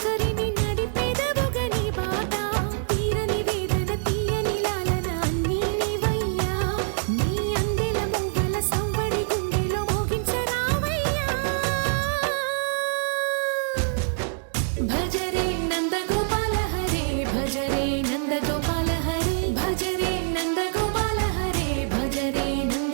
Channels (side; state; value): left; silent; digital silence